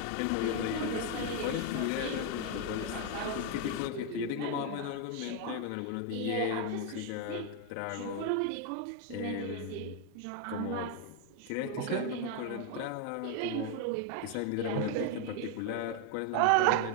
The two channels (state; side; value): different; both; correlation 0.01